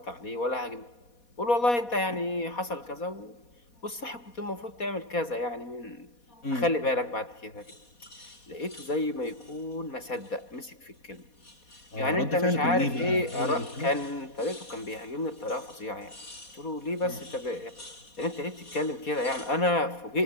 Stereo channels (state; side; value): late; right; 4.2 ms